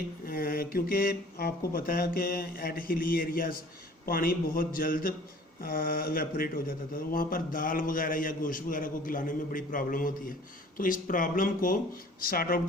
क्योंकि आपको पता है कि एट हिली एरियाज़ पानी बहुत जल्द इवेपोरेट हो जाता था, तो वहाँ पर दाल वगैरह या गोश्त वगैरह को गलाने में बड़ी प्रॉब्लम होती है। तो इस प्रॉब्लम को सॉर्ट आउट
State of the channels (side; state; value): both; normal; correlation 0.49